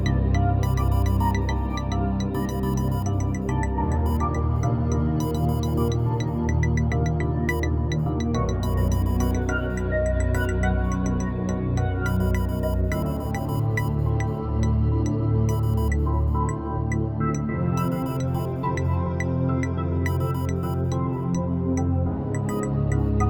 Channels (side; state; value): both; identical; correlation 1.00